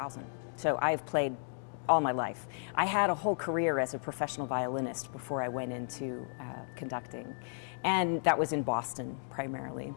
so I've played all my life. I had a whole career as a professional violinist before I went into conducting, and that was in Boston primarily.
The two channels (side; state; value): right; silent; digital silence